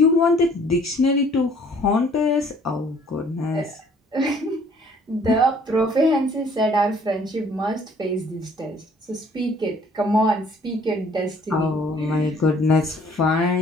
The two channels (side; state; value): both; normal; correlation 0.57